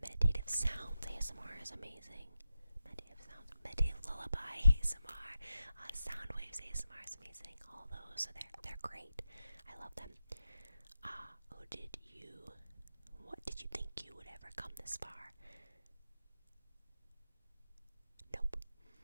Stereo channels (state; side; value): inverted; both; correlation -0.89